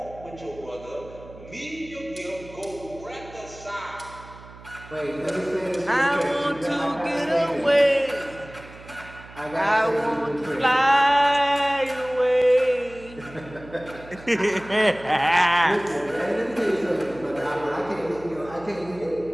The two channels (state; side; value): noise; right; hum, 19 dB below the sound